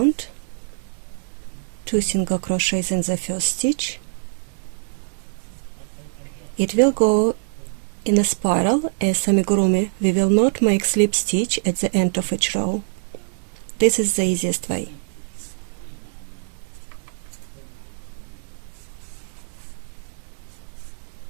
2 single crochets in the first stitch. It will go in a spiral. As amigurumi, we will not make slip stitch at the end of each row. This is the easiest way.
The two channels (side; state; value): left; silent; digital silence